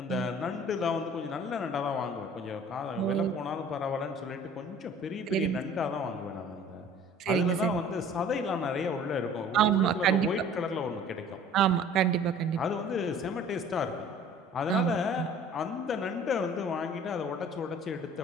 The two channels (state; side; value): normal; both; correlation 0.48